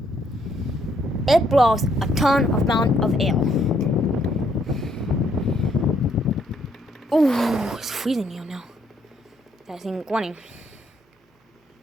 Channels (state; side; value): normal; both; correlation 0.70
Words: It blows a ton of amount of air. Ooh, it's freezing here now. That thing going.